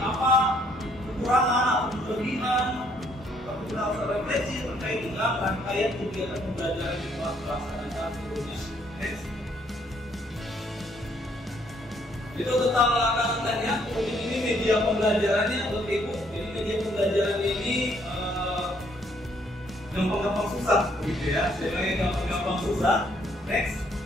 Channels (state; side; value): normal; both; correlation 0.67